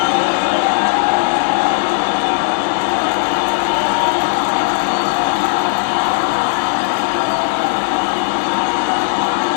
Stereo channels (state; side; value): silent; right; digital silence